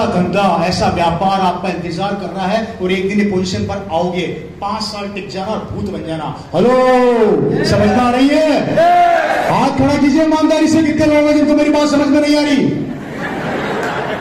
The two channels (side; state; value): both; identical; correlation 1.00